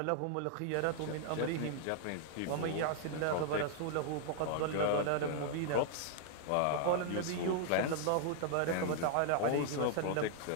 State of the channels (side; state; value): both; different; correlation 0.00